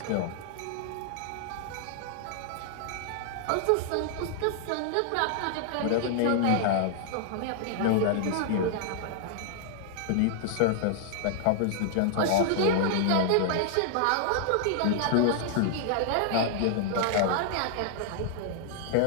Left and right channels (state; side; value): different; both; correlation -0.01